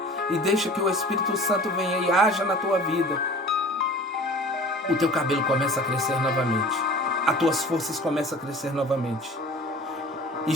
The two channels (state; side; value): normal; both; correlation 0.43